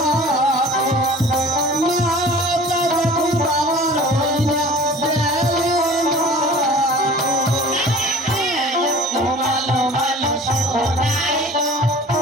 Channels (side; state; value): both; normal; correlation 0.44